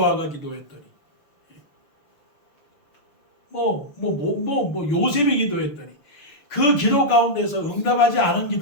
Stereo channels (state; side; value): late; right; 6.3 ms